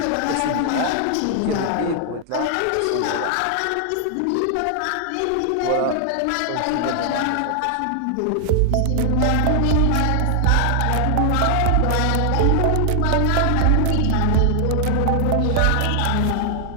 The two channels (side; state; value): both; different; correlation 0.00